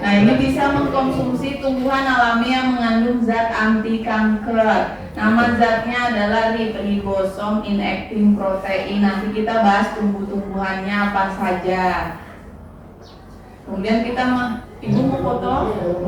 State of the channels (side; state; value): both; identical; correlation 1.00